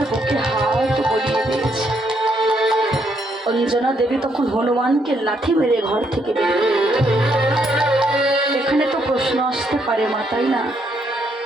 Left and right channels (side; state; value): both; normal; correlation 0.74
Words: বুকে হাত বলিয়ে দিয়েছে। অঞ্জনা দেবী তখন হনুমানকে লাথি মেরে ঘর থেকে বের করে দিল। এখানে তো প্রশ্ন আসতে পারে মা, তাই না?